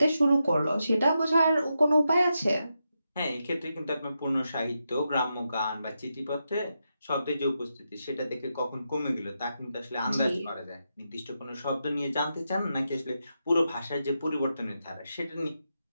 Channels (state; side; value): inverted; both; correlation -0.86